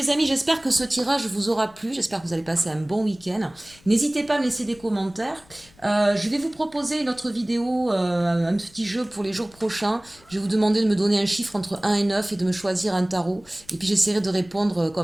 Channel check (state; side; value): noise; left; rumble, 27 dB below the sound